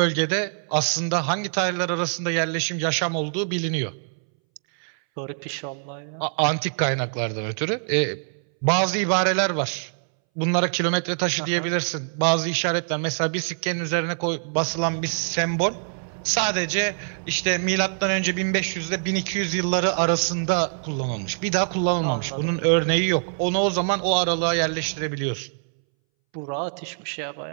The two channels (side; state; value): left; silent; 62 dB below the other